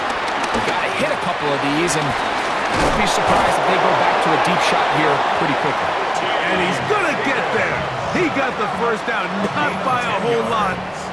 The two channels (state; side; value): identical; both; correlation 1.00